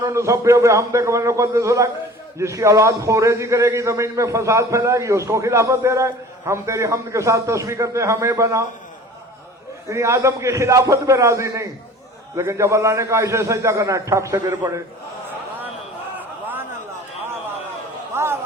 نسبح بحمدک ونقدس لک۔ جس کی اولاد خوریزی کرے گی، زمین میں فساد پھیلائے گی، اس کو خلافت دے رہا ہے۔ ہم تیری حمد کے ساتھ تسبیح کرتے ہیں، ہمیں بنا۔ یعنی آدم کی خلافت پہ راضی نہیں، لیکن جب اللہ نے کہا اسے سجدہ کرنا ہے، ٹھک سے گر پڑے۔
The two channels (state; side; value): normal; both; correlation 0.44